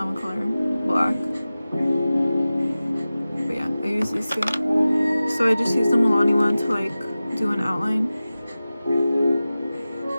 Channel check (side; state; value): both; inverted; correlation -0.95